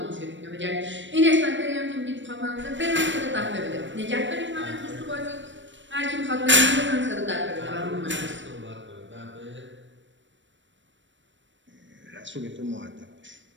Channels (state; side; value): late; left; 0.54 ms